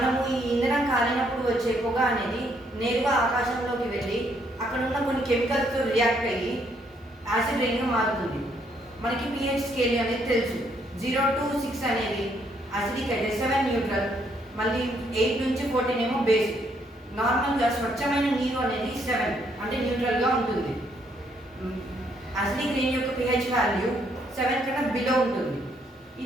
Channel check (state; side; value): normal; both; correlation 0.71